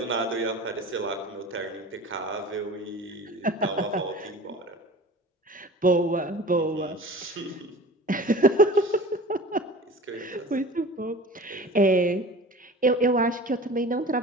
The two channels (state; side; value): normal; both; correlation 0.40